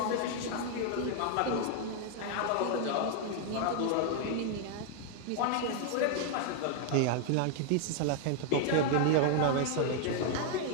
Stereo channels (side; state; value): both; different; correlation 0.00